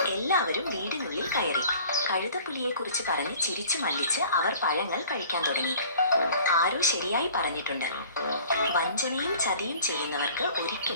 എല്ലാവരും വീടിനുള്ളിൽ കയറി. കഴുതപ്പുലിയെ കുറിച്ച് പറഞ്ഞ് ചിരിച്ചു മല്ലിച്ച് അവർ പഴങ്ങൾ കഴിക്കാൻ തുടങ്ങി. ആരോ ശരിയായി പറഞ്ഞിട്ടുണ്ട്, വഞ്ചനയും ചതിയും ചെയ്യുന്നവർക്ക്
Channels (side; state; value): both; inverted; correlation -0.49